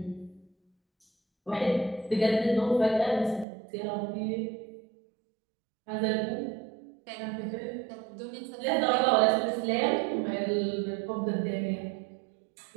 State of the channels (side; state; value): left; drops out; at 3.5 s